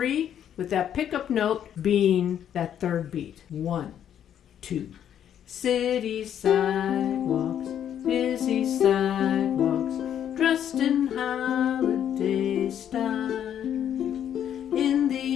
with that pickup note being that third beat. 1, 2. City sidewalks, busy sidewalks, dressed in holiday style. In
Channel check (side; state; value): right; quieter; 9.7 dB